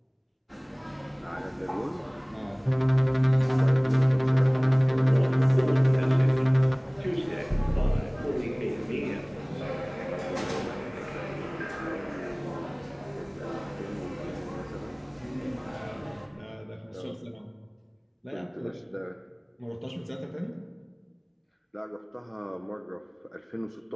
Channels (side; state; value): both; identical; correlation 1.00